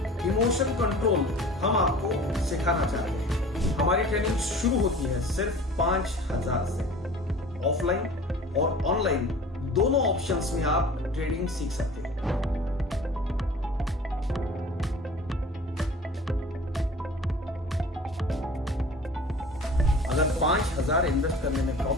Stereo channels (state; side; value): normal; both; correlation 0.43